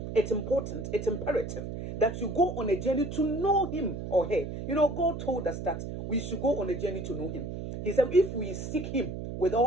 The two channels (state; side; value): noise; right; hum, 7 dB below the sound